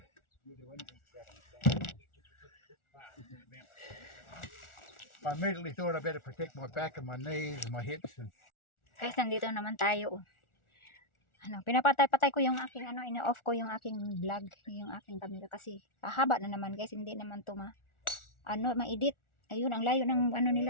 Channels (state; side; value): late; right; 1.4 ms